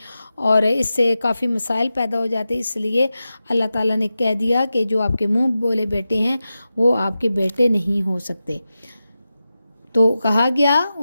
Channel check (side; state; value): both; inverted; correlation -0.93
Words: اور اس سے کافی مسائل پیدا ہو جاتے۔ اس لیے اللہ تعالیٰ نے کہہ دیا کہ جو آپ کے منہ بولے بیٹے ہیں وہ آپ کے بیٹے نہیں ہو سکتے۔ تو کہا گیا